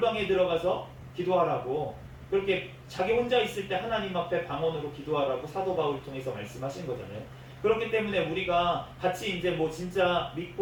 들어가서 기도하라고, 그렇게 자기 혼자 있을 때 하나님 앞에 방언으로 기도하라고 사도 바울을 통해서 말씀하신 거잖아요. 그렇기 때문에 우리가 같이 이제 뭐 진짜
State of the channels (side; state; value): both; identical; correlation 1.00